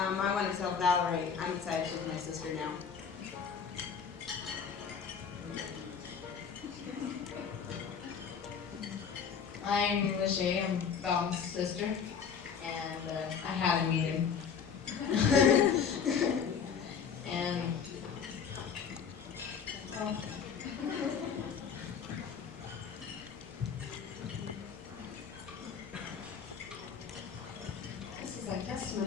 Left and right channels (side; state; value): right; quieter; 6.8 dB